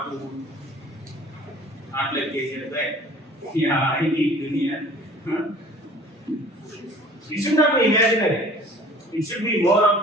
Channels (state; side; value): normal; both; correlation 0.48